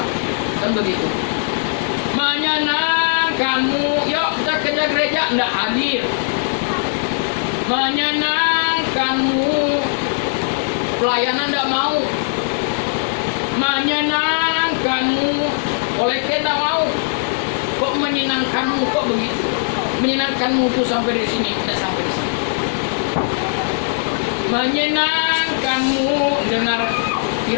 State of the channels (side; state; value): right; silent; digital silence